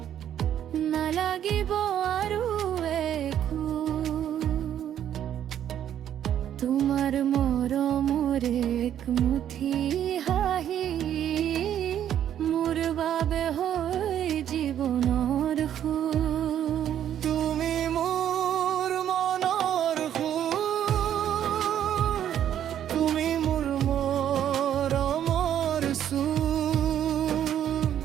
নালাগিব আৰু একো তোমাৰ মৰমৰ এক মুঠি হাঁহি মোৰ বাবে হৈ জীৱনৰ সুৰ তুমি মোৰ মনৰ সুৰ তুমি মোৰ মৰমৰ সুৰ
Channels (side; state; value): left; quieter; 10.3 dB